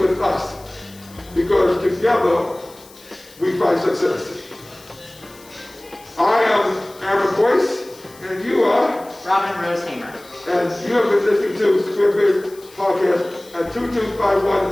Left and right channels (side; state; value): left; noise; hiss, 23 dB below the sound